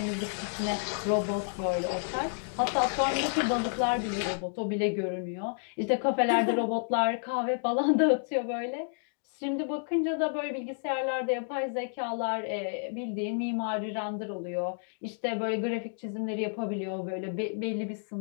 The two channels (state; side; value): silent; right; digital silence